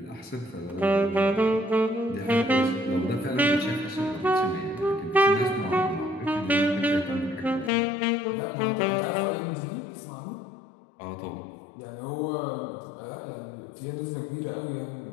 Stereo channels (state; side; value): drops out; right; at 7.7 s